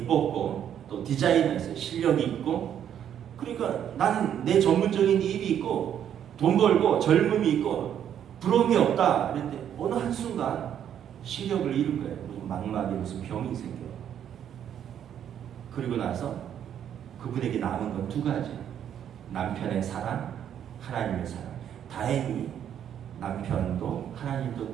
또 디자이너였어요. 실력이 있고 그러니까 나는 내 전문적인 일이 있고 돈 벌고 젊음이 있고 부러움이 없다. 그런데 어느 한순간 시력을 잃은 거예요. 망막에 무슨 병이 생겨요. 그리고 나서 그분에게 남은 건 두 가지. 남편의 사랑, 하나님의 사랑. 다행히 남편도 하나님도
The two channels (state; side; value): quieter; left; 9.6 dB